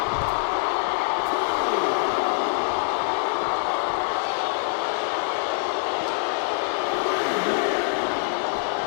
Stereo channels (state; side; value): silent; right; digital silence